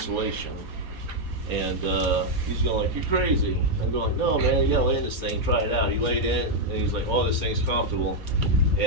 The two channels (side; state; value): left; late; 4.3 ms